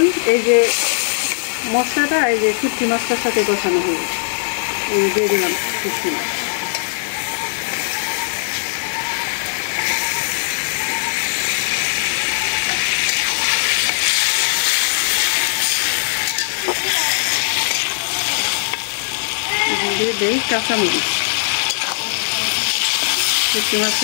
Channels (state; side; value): silent; right; digital silence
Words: এই যে মশলাটা এই যে শুটকি মাছটার সাথে কষানো হবে। এই দিয়ে দিলাম শুটকি মাছ। দিয়ে দেই কাঁচামরিচ। শুটকি মাছটা